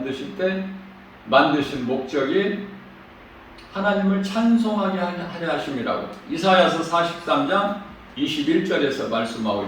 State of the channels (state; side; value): identical; both; correlation 1.00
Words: 때 만드신 목적이 하나님을 찬송하게 하려 하심이라고 이사야서 43장 21절에서 말씀하고